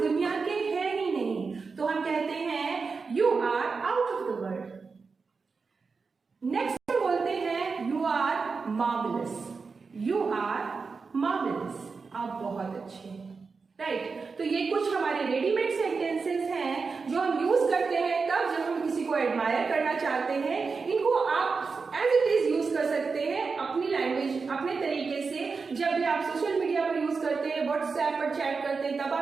दुनिया के हैं ही नहीं, तो हम कहते हैं you are out of the world. Next बोलते हैं, you are marvellous, you are marvellous, आप बहुत अच्छे हैं। राइट, तो ये कुछ हमारे रेडीमेड सेंटेंसेस हैं जो हम यूज करते हैं तब जब हम किसी को एडमायर करना चाहते हैं। इनको आप एज इट इज यूज कर सकते हैं अपनी लैंग्वेज, अपने तरीके से। जब भी आप सोशल मीडिया पर यूज करते हैं, व्हाट्सएप पर चैट करते हैं, तब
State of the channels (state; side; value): quieter; left; 4.7 dB